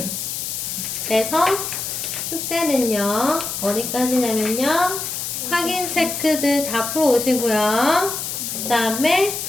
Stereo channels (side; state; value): left; noise; hiss, 4 dB below the sound